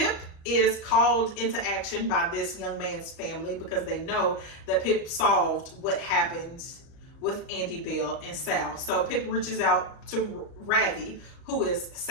is called into action by this young man's family because they know that Pip solved what happened with Andy Bell and Sal. So Pip reaches out to Ravi, who is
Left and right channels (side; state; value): right; late; 38 ms